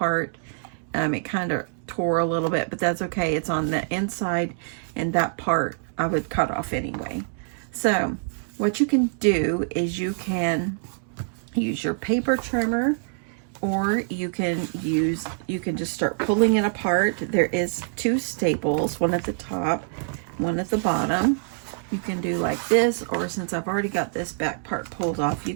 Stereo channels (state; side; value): silent; left; digital silence